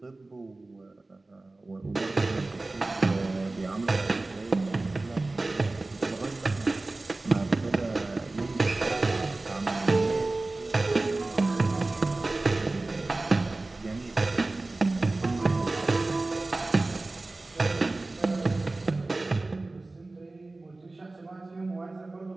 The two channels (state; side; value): quieter; left; 3.1 dB